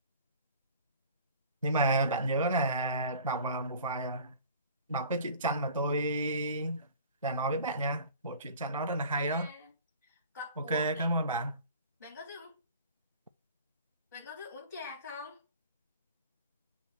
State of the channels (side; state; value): both; inverted; correlation -0.45